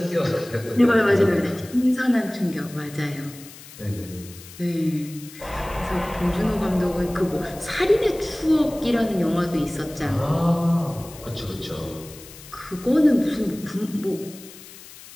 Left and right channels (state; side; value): noise; left; hiss, 18 dB below the sound